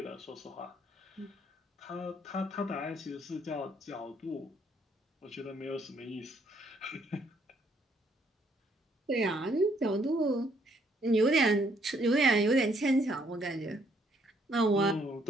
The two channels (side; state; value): both; normal; correlation 0.68